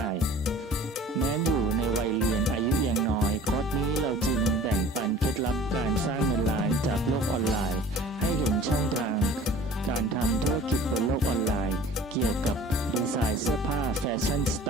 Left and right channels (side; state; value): both; normal; correlation 0.46